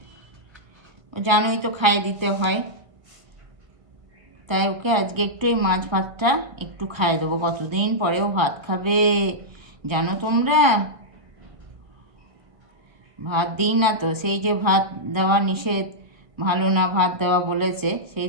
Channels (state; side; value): late; left; 1.3 ms